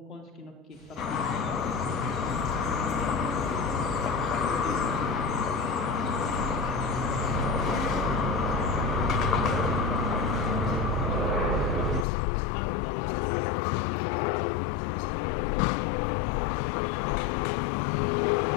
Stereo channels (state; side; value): drops out; right; at 12.1 s